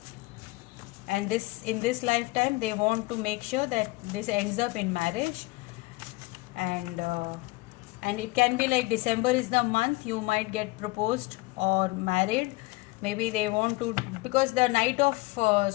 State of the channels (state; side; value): quieter; right; 22.9 dB